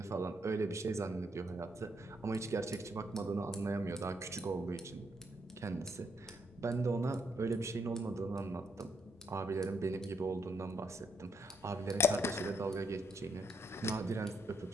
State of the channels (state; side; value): normal; both; correlation 0.76